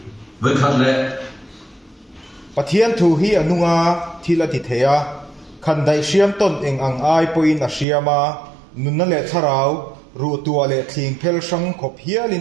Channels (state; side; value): drops out; left; at 7.9 s